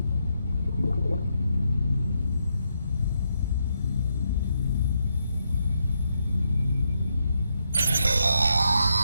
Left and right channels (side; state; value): both; inverted; correlation -0.80